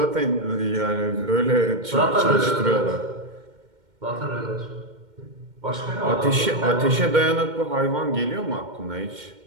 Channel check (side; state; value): left; late; 2.1 ms